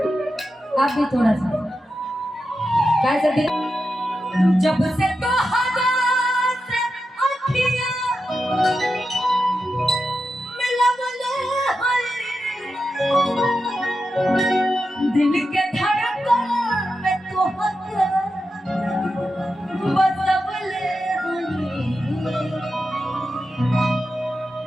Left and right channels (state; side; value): normal; both; correlation 0.89